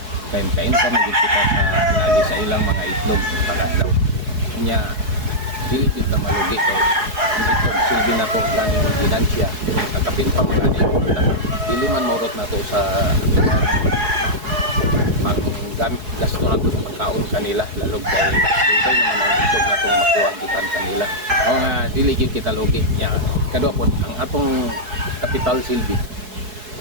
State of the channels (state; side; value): late; left; 4.7 ms